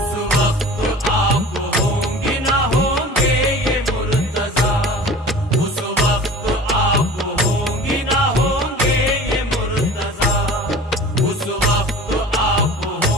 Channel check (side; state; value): both; normal; correlation 0.41